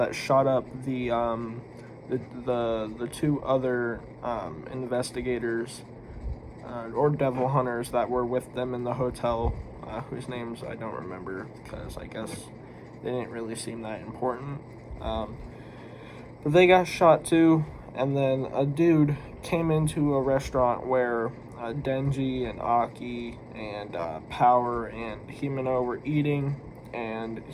shot up the two other investigators or devil hunters that were with them in the hotel, whose names I don't remember because I guess they didn't really seem that important. But they got shot too, and then a dude came into a restaurant where Denji and Aki and Power and Himeno were eating, and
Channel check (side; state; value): both; identical; correlation 1.00